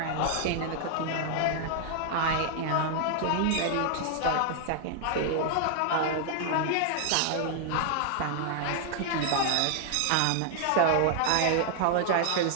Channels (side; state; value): both; different; correlation 0.00